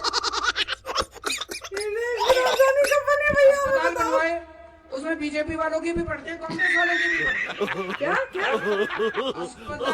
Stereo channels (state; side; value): identical; both; correlation 1.00